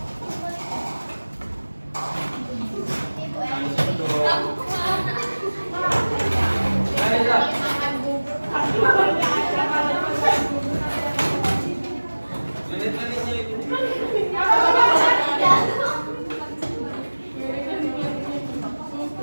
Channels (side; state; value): both; inverted; correlation -1.00